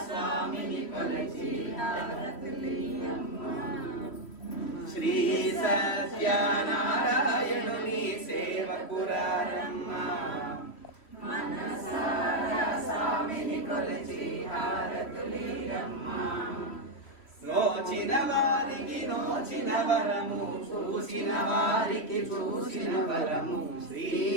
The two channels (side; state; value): right; late; 3.1 ms